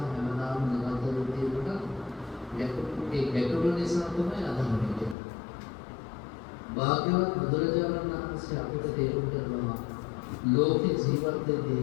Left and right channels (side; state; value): right; drops out; at 5.2 s